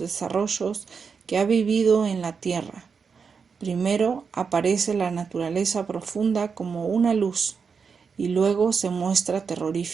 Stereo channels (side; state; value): left; quieter; 5.8 dB